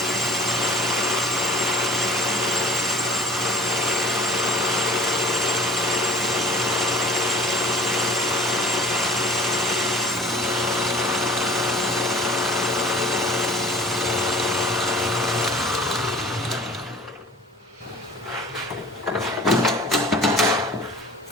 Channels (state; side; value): normal; both; correlation 0.47